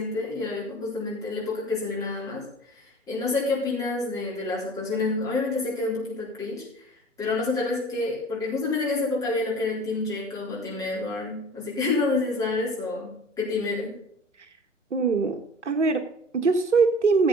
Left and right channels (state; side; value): normal; both; correlation 0.43